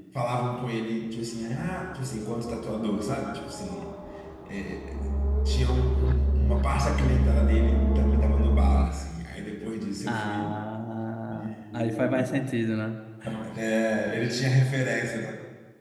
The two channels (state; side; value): identical; both; correlation 1.00